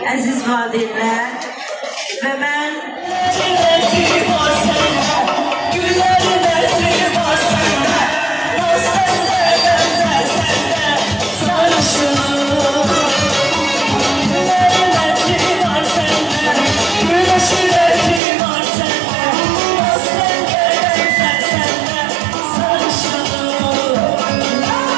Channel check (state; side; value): drops out; left; at 18.2 s